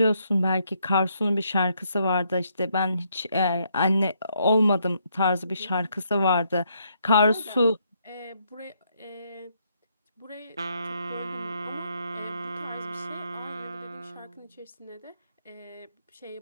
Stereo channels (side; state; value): both; inverted; correlation -0.74